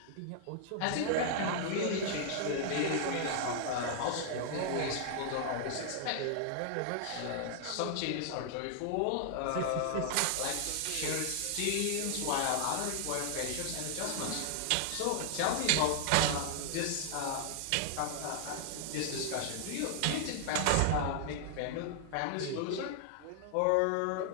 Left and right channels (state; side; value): different; both; correlation -0.01